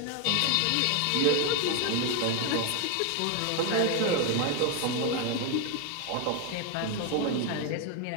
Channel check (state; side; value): different; both; correlation 0.01